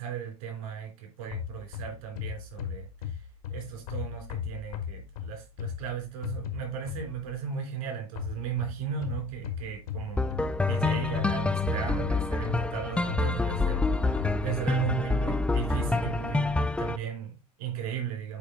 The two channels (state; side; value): normal; both; correlation 0.54